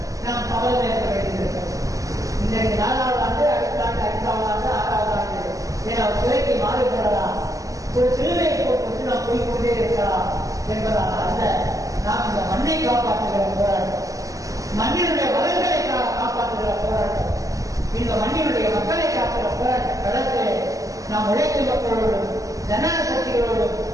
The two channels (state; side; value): late; left; 0.16 ms